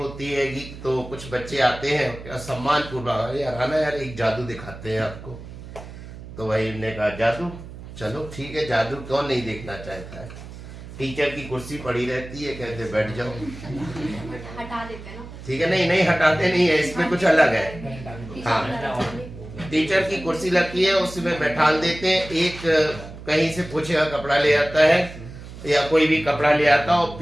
है तो कुछ बच्चे आते हैं सम्मान पूर्वक, यार आना यार एक जादू दिखाते हैं आपको। तो वही ने कहा जादू, चलो ठीक है, जादू कौन नहीं देखना चाहता है। टीचर की कुर्सी पड़ी रहती है, कहते बैठ जाओ, हटा देते हैं ना, ठीक है, नहीं हटाते नहीं है, इसमें कुछ अलग है। हाँ, टीचर की कुर्सी लगती है उसमें बैठा देते हैं, एक कहीं से पूछे का कपड़ा ले आता है या कोई भी कपड़ा ले आता है और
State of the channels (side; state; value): right; noise; hum, 14 dB below the sound